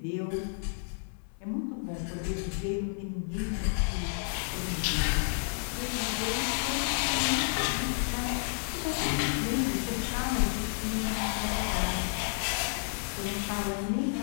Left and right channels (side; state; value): right; silent; digital silence